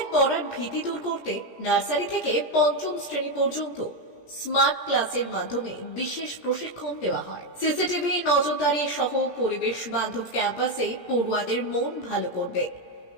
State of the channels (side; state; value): right; late; 17 ms